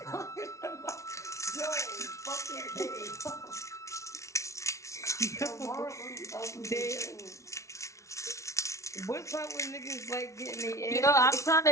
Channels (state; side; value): late; right; 0.14 ms